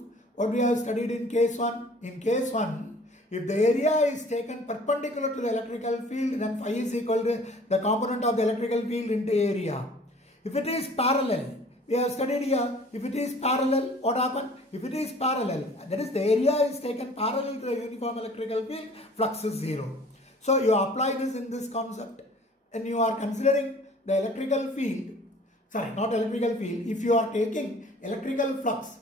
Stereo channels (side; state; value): both; normal; correlation 0.50